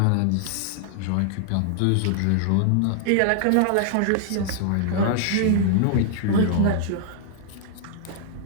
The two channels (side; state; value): both; different; correlation -0.01